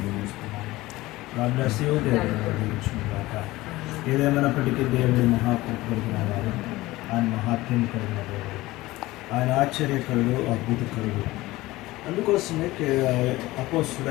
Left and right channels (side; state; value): right; quieter; 18.7 dB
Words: గాడ్ దేవుడు దీవించుగాక. ఏదేమైనప్పటికీ దేవుడి మహాకృప కలిగిన వారు, ఆయన మహాత్మ్యం కలిగిన దేవుడు, ఆయన ఆశ్చర్యకరుడు, అద్భుతకరుడు. అందుకోసమే